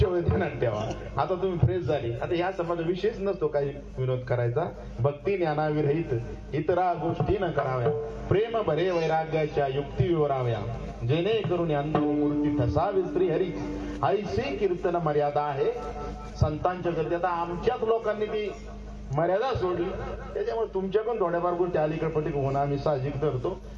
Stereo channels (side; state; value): both; identical; correlation 1.00